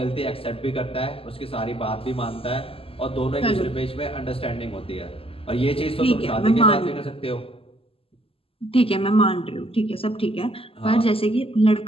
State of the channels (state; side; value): late; right; 0.27 ms